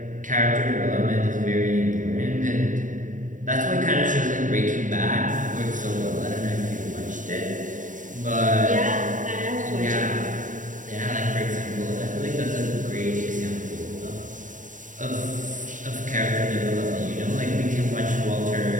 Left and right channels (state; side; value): late; left; 0.37 ms